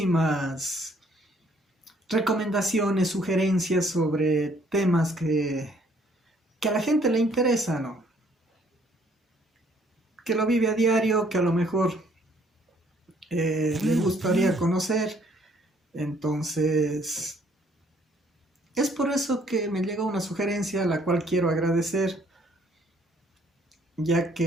recomendaciones, sugerencias sobre temas que a la gente le interesa, ¿no? Que lo vive a diario, que a lo mejor le gustaría conocer. Entonces, es por eso que me llegó una sugerencia a la cual quiero agradecer, ya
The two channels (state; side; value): normal; both; correlation 0.64